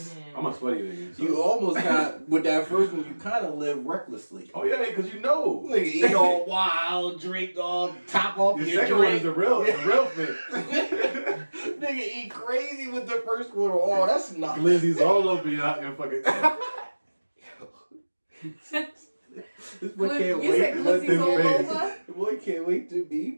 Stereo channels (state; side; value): inverted; both; correlation -1.00